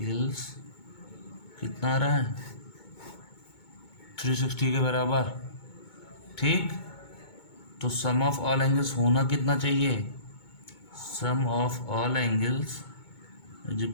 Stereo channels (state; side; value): late; right; 2.2 ms